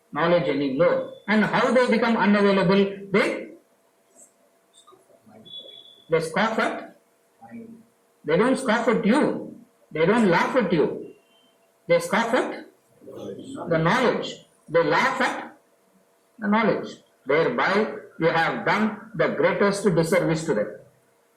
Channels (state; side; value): identical; both; correlation 1.00